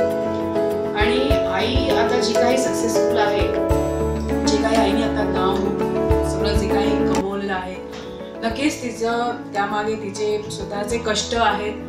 आणि आई आता जी काही सक्सेसफुल आहे, जे काही आईने आता नाव सगळं जे काही कमवलेलं आहे, नक्कीच तिचं त्यामागे तिचे स्वतःचे कष्ट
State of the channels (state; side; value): identical; both; correlation 1.00